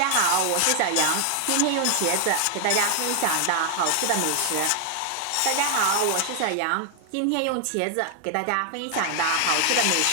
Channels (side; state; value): both; different; correlation 0.00